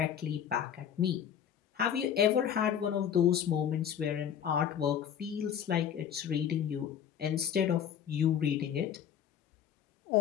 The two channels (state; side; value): quieter; right; 9.0 dB